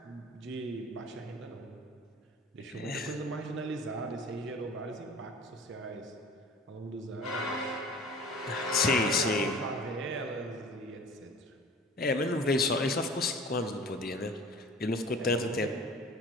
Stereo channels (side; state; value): both; normal; correlation 0.43